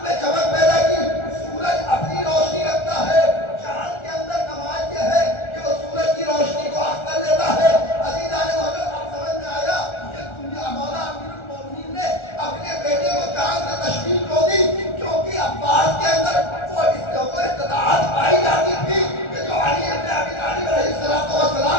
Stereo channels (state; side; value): late; right; 1.4 ms